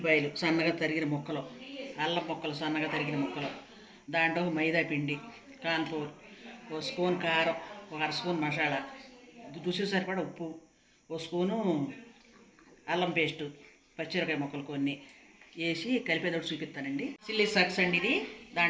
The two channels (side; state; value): both; identical; correlation 1.00